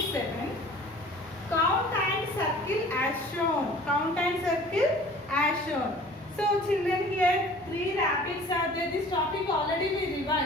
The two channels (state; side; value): normal; both; correlation 0.47